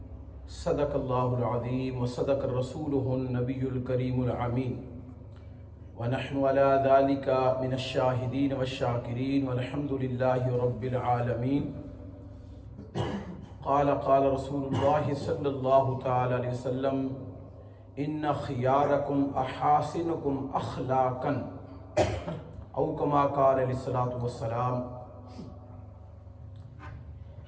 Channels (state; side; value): identical; both; correlation 1.00